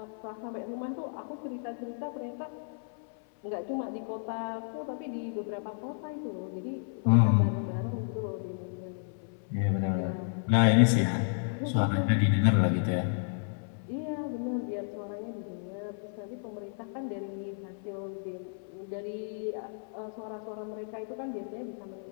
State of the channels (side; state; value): right; silent; 56 dB below the other